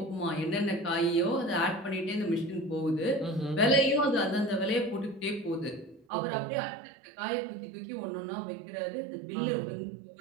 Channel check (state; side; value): drops out; left; at 6.1 s